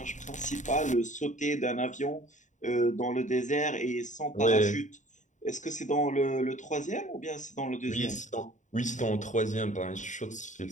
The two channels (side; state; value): right; late; 0.36 ms